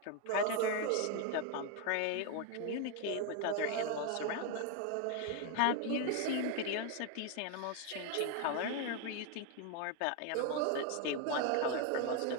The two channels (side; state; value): both; different; correlation 0.01